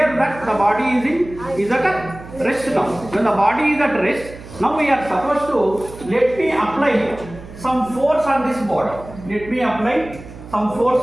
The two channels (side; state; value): right; noise; hum, 16 dB below the sound